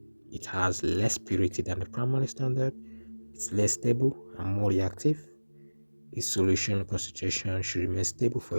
it has less purity than the primary standard, it's less stable and more reactive, its solution concentration should remain stable for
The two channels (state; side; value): inverted; both; correlation -1.00